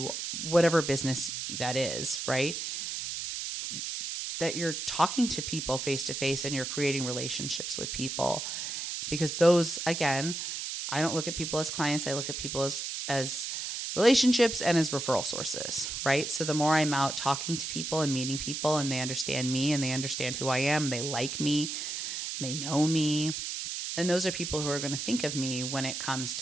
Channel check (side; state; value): right; noise; hiss, 4 dB below the sound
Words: whatever business that is, right? That you're talking to people face to face and you're creating relationships with people. Because those, again, I don't look at people as clients. I look at people as relationships and as referral sources, right? So the more I'm out talking to people and meeting people and they understand me and they understand who I am, they like me, they know me, and those are people who are going to think of me when it comes